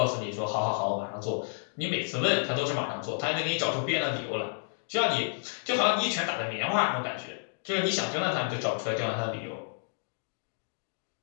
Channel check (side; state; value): right; silent; digital silence